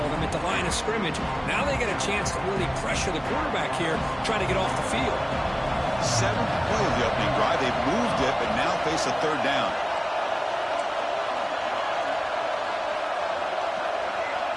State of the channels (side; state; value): both; identical; correlation 1.00